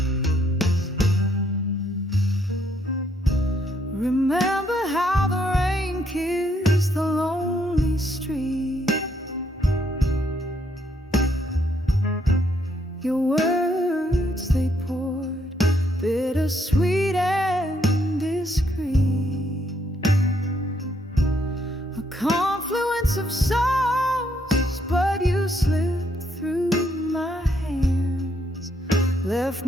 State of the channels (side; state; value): both; normal; correlation 0.72